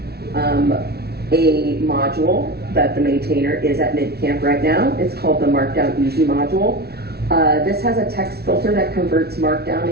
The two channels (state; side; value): late; left; 0.46 ms